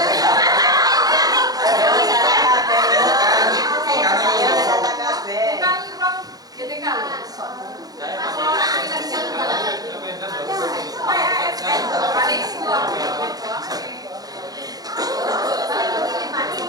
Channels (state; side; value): late; left; 0.18 ms